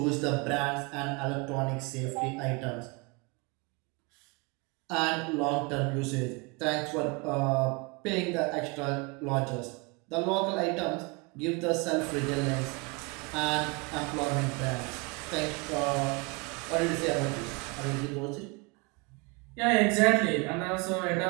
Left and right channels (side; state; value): left; quieter; 28.9 dB